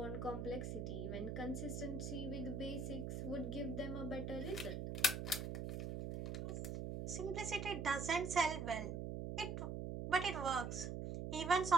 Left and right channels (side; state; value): right; noise; hum, 3 dB below the sound